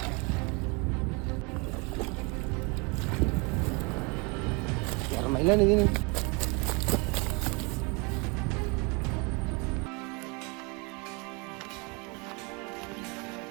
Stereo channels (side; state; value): left; quieter; 30.2 dB